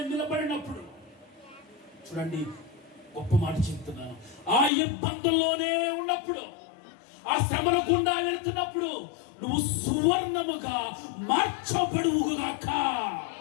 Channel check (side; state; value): right; drops out; at 4.7 s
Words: నిలబడినప్పుడు, చూడండి గొప్ప మాట చెప్తున్నాను, ఆ ఇబ్బందుల్లోనే ఉన్నప్పుడు, ఆ శ్రమల గుండా వెళుతున్నప్పుడు నువ్వు సువర్ణముగా మార్చబడువుగాక.